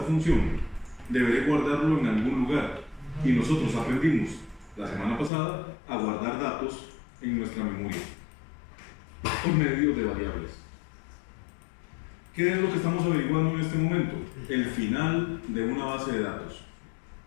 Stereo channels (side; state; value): right; drops out; at 5.3 s